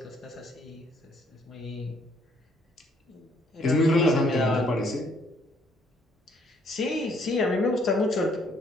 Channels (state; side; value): normal; both; correlation 0.66